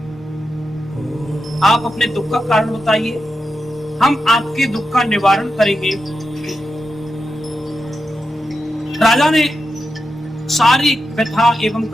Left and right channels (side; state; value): both; normal; correlation 0.88